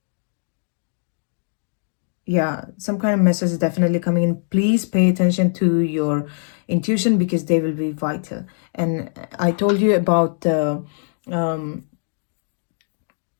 Yeah, some kind of message is definitely coming in. Please pay attention to your intuition because they will be vital. And I told you about the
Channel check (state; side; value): silent; right; digital silence